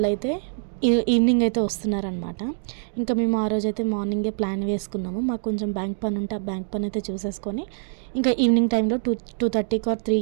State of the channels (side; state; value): left; silent; digital silence